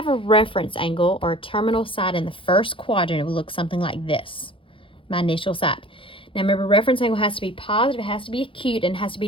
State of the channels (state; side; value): late; right; 0.25 ms